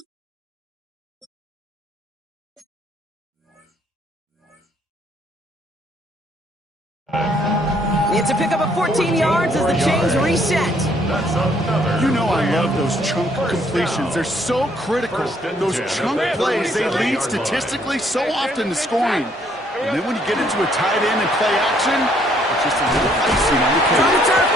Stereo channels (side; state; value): both; normal; correlation 0.66